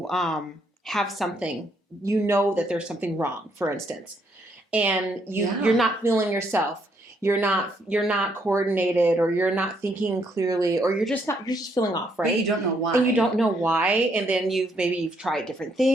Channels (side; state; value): both; normal; correlation 0.72